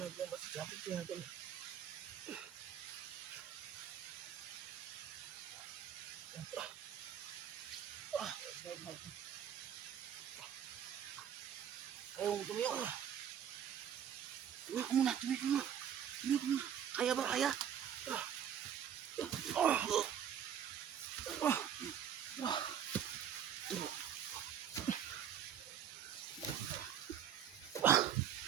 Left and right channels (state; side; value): quieter; left; 9.1 dB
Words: kaya, Tol. Kaya mo tumiyak. Tumiyak muna. Kaya ba, kaya?